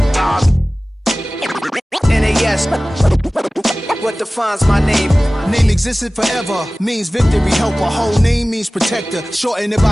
NAS. What defines my name? Name existed forever, means victory, helper. Whole name means protector, shorten it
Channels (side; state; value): both; normal; correlation 0.98